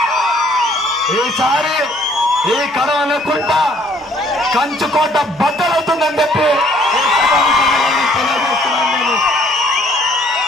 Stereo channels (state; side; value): normal; both; correlation 0.62